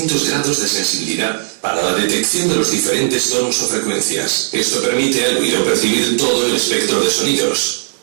grados de sensibilidad para la detección de los diferentes tonos o frecuencias. Esto permite al oído percibir todo el espectro de sonidos.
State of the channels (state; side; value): silent; left; digital silence